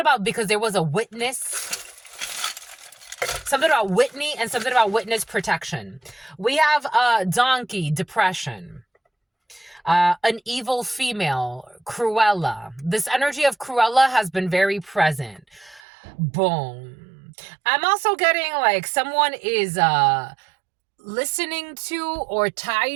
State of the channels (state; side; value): drops out; left; at 15.8 s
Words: because there was a witness. Something about Whitney and something about witness protection. We have donkey, depression. An evil female, Cruella. This energy of Cruella has been very present. Boom. I'm also getting like someone is listening to or